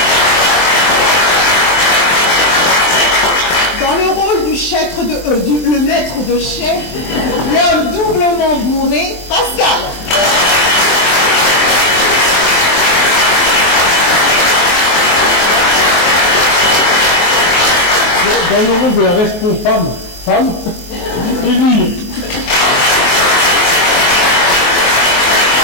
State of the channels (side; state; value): right; late; 23 ms